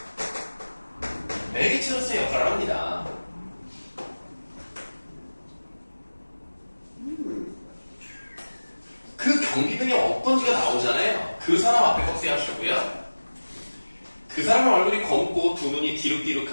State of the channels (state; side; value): inverted; both; correlation -1.00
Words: 매개체로서의 역할을 합니다. 그 경비병이 어떤지가 나오잖아요. 그 사람 앞에 꺽쇠하시고요. 그 사람의 얼굴이 검고 두 눈이